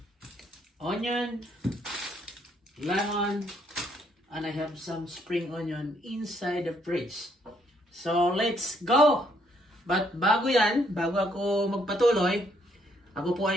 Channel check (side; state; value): both; normal; correlation 0.70